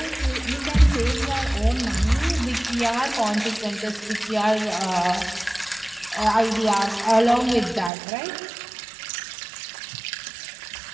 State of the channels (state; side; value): drops out; left; at 7.9 s